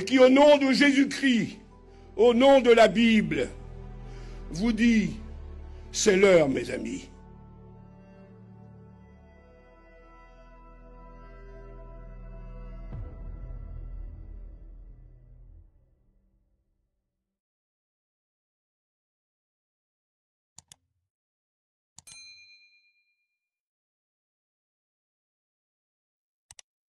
qui, au nom de Jésus-Christ, au nom de la Bible, vous dit, c'est l'heure, mes amis.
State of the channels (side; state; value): both; identical; correlation 1.00